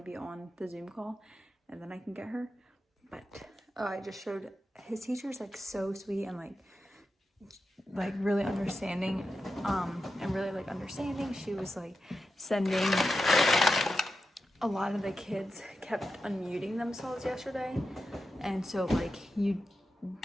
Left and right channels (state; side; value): normal; both; correlation 0.90